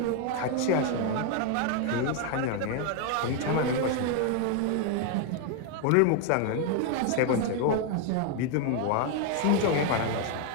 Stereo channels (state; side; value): different; both; correlation 0.01